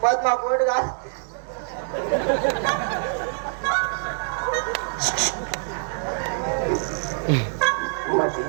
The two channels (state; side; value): silent; left; digital silence